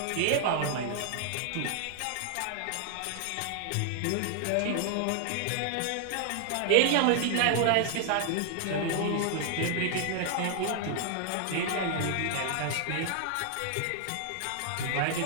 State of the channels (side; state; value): both; different; correlation 0.00